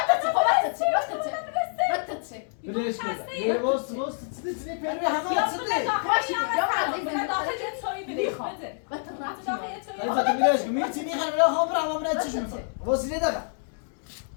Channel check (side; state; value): right; silent; digital silence